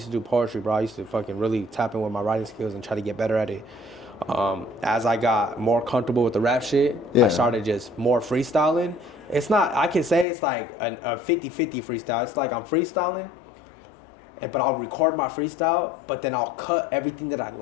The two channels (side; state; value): right; drops out; at 10.2 s